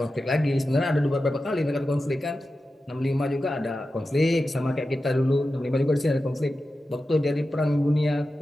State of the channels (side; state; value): both; normal; correlation 0.92